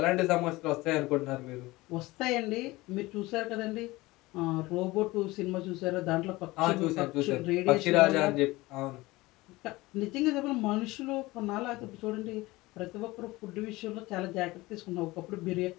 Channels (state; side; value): quieter; right; 20.4 dB